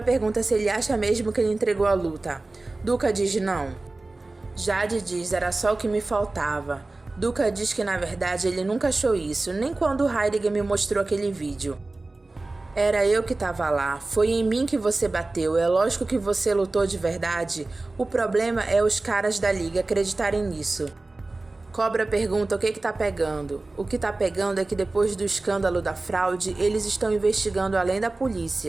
pergunta se ele acha mesmo que ele entregou a luta. Duca diz não. Jade diz era só o que me faltava. Duca diz que na verdade ele nunca achou isso, nem quando Heidegger me mostrou aquele vídeo. Era eu que estava lá, foi em mim que você bateu, é lógico que você lutou de verdade. O problema é os caras da liga acreditarem nisso. Cobra pergunta o que tá pegando. O que tá pegando é que depois do escândalo da fraude, eles estão investigando além da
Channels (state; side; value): quieter; left; 3.1 dB